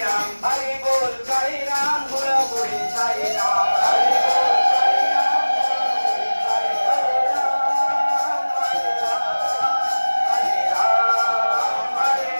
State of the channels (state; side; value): inverted; both; correlation -1.00